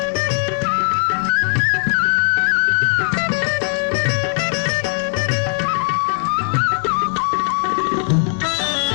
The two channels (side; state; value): right; silent; digital silence